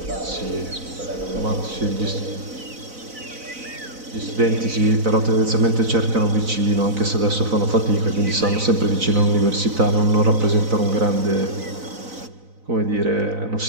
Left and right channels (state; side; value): late; left; 4.0 ms